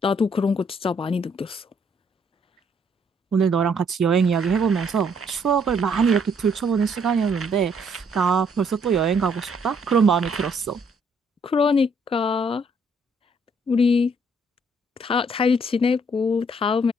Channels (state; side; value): normal; both; correlation 0.67